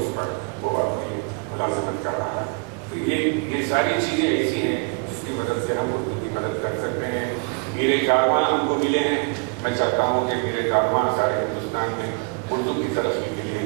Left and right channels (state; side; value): quieter; left; 34.3 dB